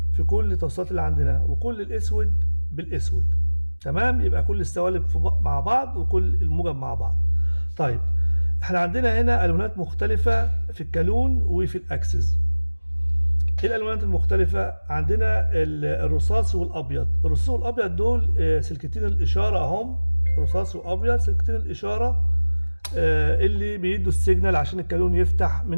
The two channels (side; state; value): both; inverted; correlation -1.00